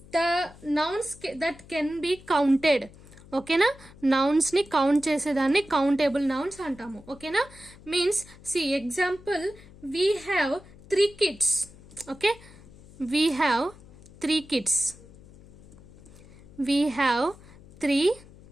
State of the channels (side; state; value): left; noise; hum, 22 dB below the sound